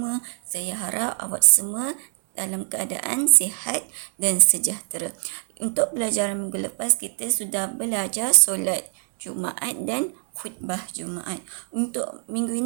Saya harap awak semua dalam keadaan sihat dan sejahtera. Untuk pelajaran minggu lepas, kita sudah belajar solat Jumaat dan khutbah Jumaat. Untuk minggu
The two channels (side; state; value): left; silent; 55 dB below the other